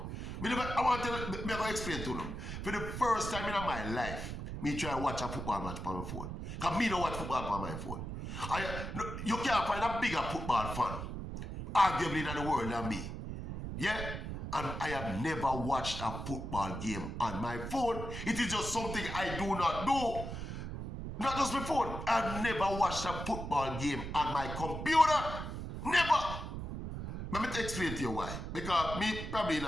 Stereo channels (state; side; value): noise; right; rumble, 6 dB below the sound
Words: I'm going to explain to them. For the first time in my life, me try to watch a football match on my phone. Because me don't watch football on my phone. You can't find a bigger football fan, arguably, in the world than me. Yeah? And I have never watched a football game on my phone. It is just something I do not do. Not just my phone. I've never watched a football game on my computer. Never. Let me explain to you why. Because me probably in